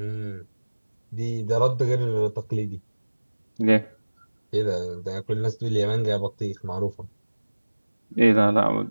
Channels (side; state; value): both; inverted; correlation -1.00